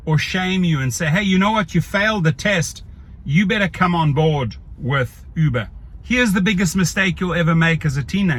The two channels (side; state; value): both; identical; correlation 1.00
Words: or shame you and say, hey, you know what, you failed the test, you better come on board with Uber. Here's the biggest mistake you'll ever make as a